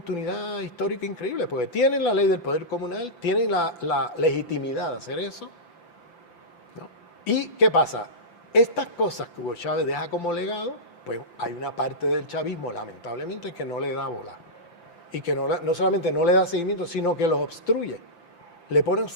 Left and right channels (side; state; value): right; late; 5.8 ms